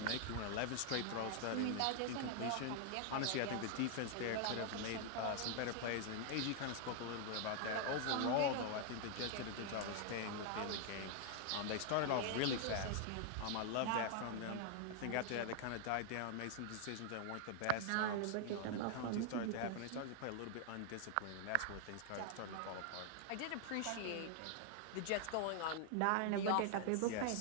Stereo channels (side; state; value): both; different; correlation 0.00